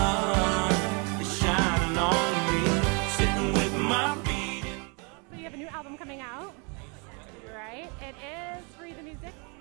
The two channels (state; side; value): quieter; left; 33.4 dB